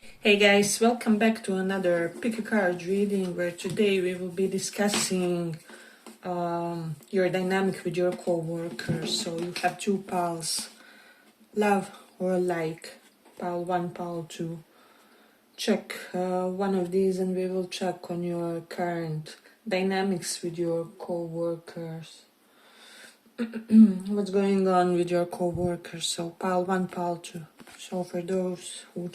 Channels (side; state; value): both; identical; correlation 1.00